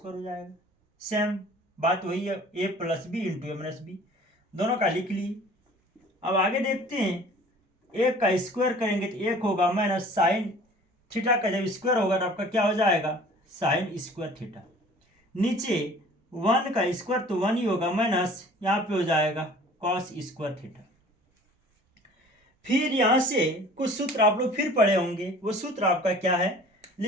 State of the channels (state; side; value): normal; both; correlation 0.48